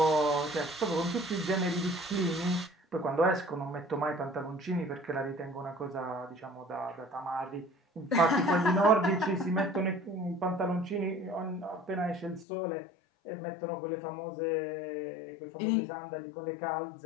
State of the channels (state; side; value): drops out; right; at 12.5 s